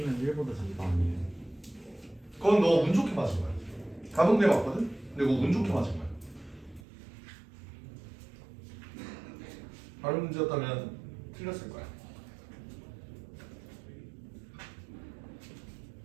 1보다 작다 아니에요? 그건 너 운 좋게 맞은 거야. 답은 그게 맞거든? 근데 그거 운 좋게 맞은 거야. 다른 문제였다면 틀렸을 거야.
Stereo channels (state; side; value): drops out; left; at 6.8 s